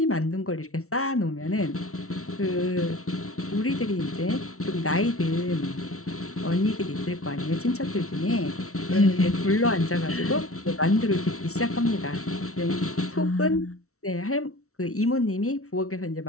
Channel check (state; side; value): late; right; 0.63 ms